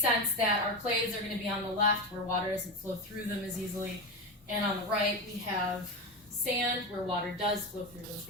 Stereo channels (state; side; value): normal; both; correlation 0.18